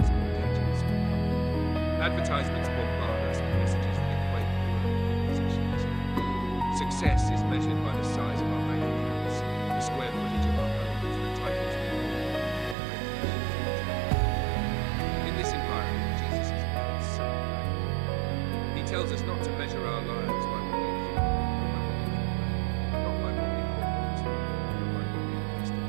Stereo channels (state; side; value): drops out; left; at 12.8 s